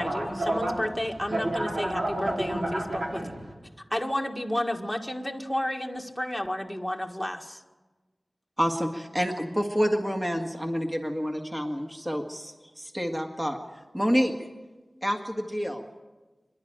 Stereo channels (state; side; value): normal; both; correlation 0.98